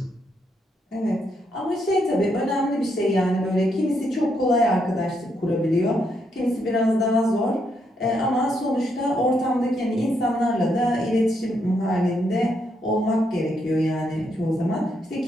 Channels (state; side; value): normal; both; correlation 0.77